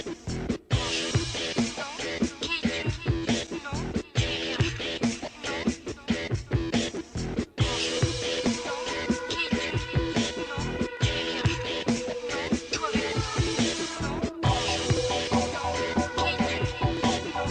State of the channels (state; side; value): identical; both; correlation 1.00